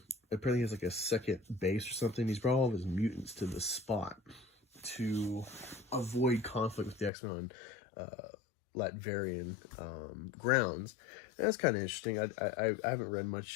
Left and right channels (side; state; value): right; drops out; at 7.1 s